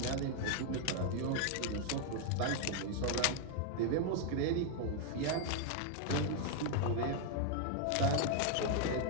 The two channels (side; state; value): both; different; correlation 0.00